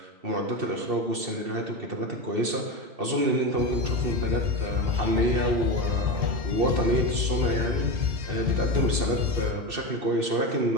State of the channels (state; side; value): late; left; 2.7 ms